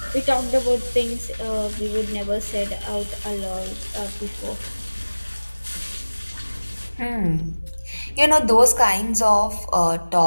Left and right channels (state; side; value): inverted; both; correlation -1.00